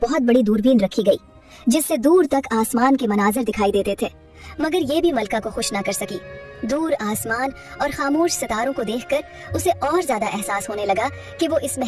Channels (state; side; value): identical; both; correlation 1.00